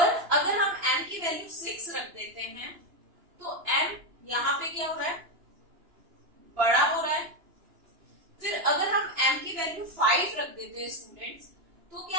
अगर हम M की वैल्यू 6 रख देते हैं तो M यहाँ पे क्या हो रहा है, बड़ा हो रहा है। फिर अगर हम M की वैल्यू 5 रख देते हैं स्टूडेंट्स तो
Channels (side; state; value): left; late; 2.9 ms